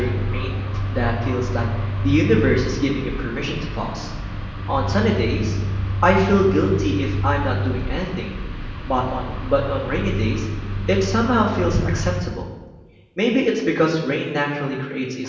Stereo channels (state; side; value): identical; both; correlation 1.00